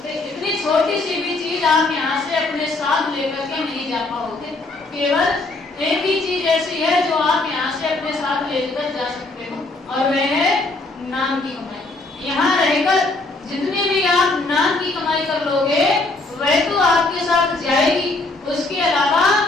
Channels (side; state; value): right; quieter; 3.2 dB